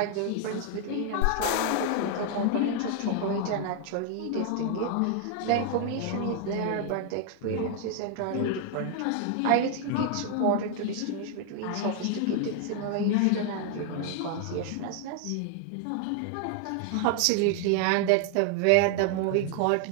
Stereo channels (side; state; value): both; different; correlation 0.00